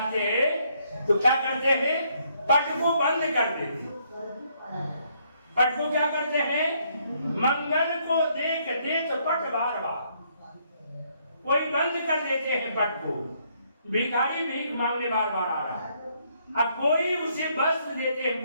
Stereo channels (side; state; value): both; inverted; correlation -0.70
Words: हैं तो क्या करते हैं? पट को बंद कर देते। पट को क्या करते हैं? मंगल को देख देत पट बार बार। कोई बंद कर देते हैं पट को। भिखारी भीख मांगने बार बार आ रहा है, अब कोई उसे वस्त्र देते हैं